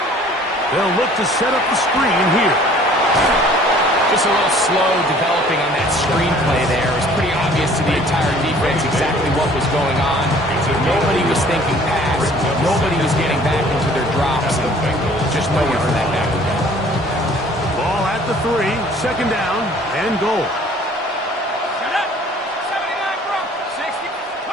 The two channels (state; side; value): normal; both; correlation 0.53